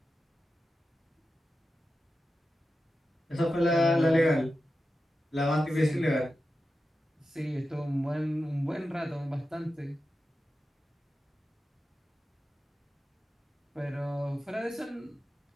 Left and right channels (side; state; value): both; normal; correlation 0.91